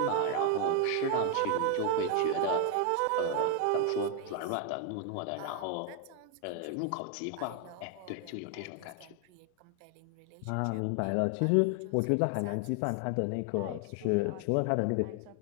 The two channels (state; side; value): different; both; correlation 0.01